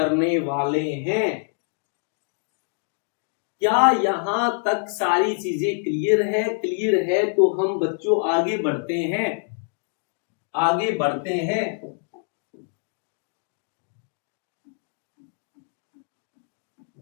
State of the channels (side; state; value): right; silent; 58 dB below the other